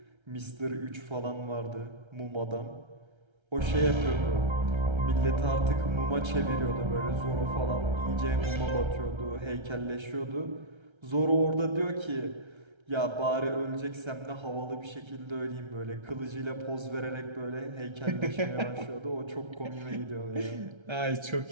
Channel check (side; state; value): left; late; 1.3 ms